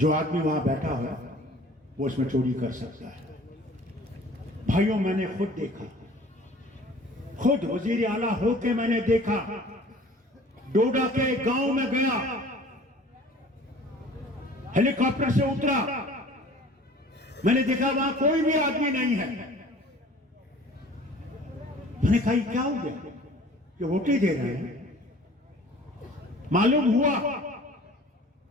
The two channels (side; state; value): both; normal; correlation 0.48